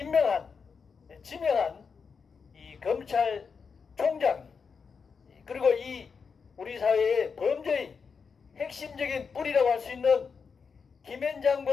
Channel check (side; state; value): right; quieter; 5.6 dB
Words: 지명한 이 검찰총장 그리고 이 우리 사회의 범죄의 핵심적인 뿌리라고 할 수 있는